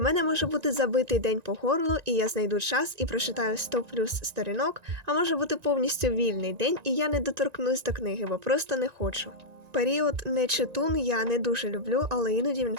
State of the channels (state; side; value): late; left; 1.9 ms